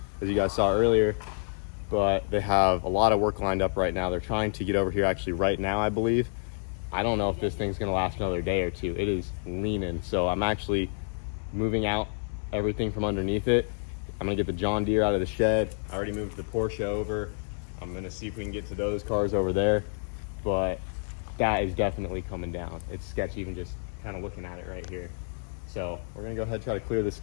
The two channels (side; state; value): right; silent; digital silence